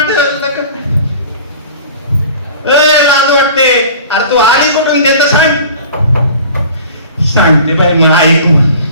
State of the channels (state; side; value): inverted; both; correlation -0.43